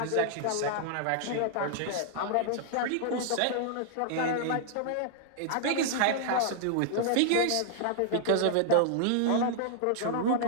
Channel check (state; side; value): different; both; correlation -0.01